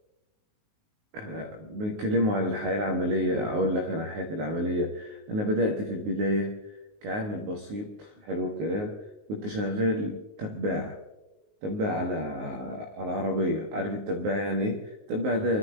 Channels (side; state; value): left; late; 19 ms